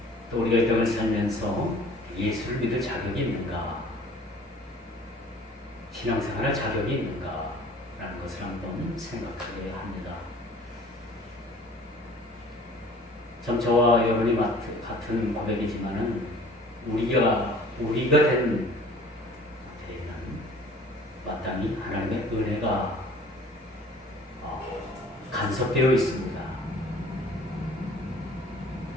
또 우리가 이 땅을 살면서 예수를 믿을 자격이 있는가, 신앙생활할 자격이 있는가 라는 것을 한번 생각하게 합니다. 참 저와 여러분이 같은 고백이지만은 우리가 된 데에는 마땅히 하나님의 은혜가 간섭되어 있습니다.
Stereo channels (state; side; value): normal; both; correlation 0.50